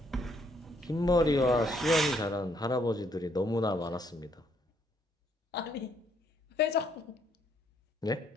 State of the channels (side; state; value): both; normal; correlation 0.70